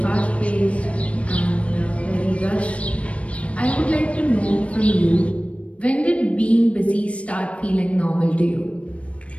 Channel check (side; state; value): right; late; 0.063 ms